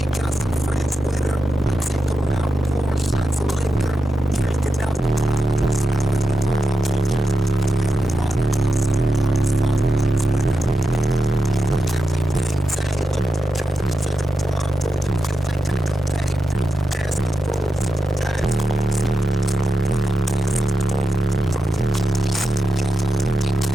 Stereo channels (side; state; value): both; normal; correlation 0.89